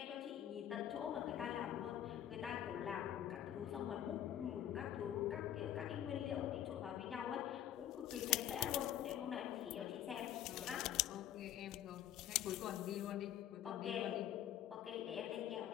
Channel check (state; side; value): quieter; right; 11.2 dB